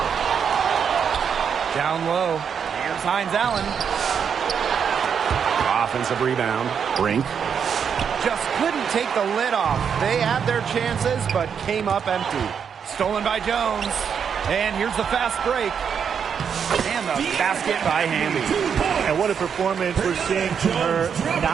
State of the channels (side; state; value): left; quieter; 7.2 dB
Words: Down low. Here's Hines Allen. Offensive rebound. Brink. Just couldn't take the lid off. They had their chances, but came up empty. Stolen by Jones. And here's the fast break. And the basket by Hamby. And what a performance we're seeing from her.